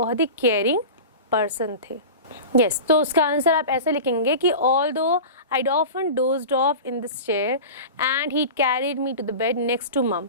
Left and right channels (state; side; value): inverted; both; correlation -0.31